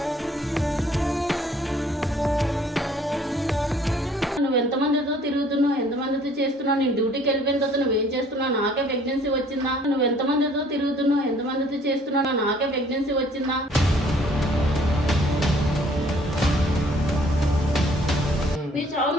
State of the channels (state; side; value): normal; both; correlation 0.58